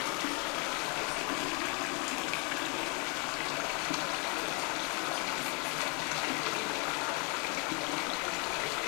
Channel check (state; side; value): quieter; right; 33.9 dB